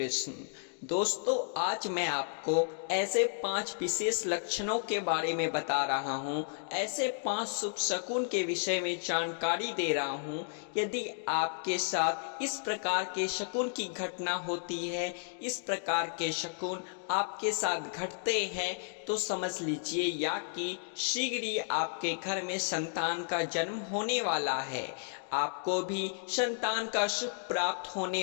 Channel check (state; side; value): silent; right; digital silence